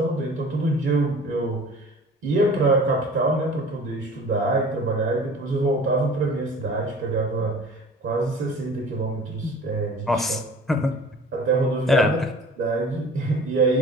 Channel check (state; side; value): normal; both; correlation 0.44